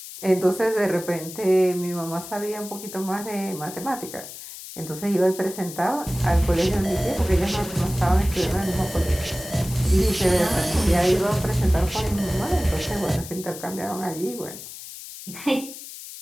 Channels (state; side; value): noise; left; hiss, 13 dB below the sound